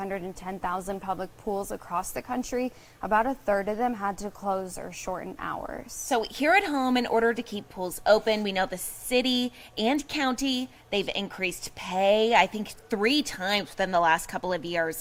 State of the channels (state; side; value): identical; both; correlation 1.00